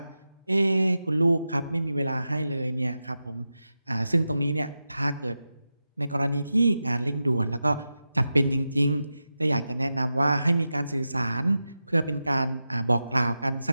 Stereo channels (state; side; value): inverted; both; correlation -0.91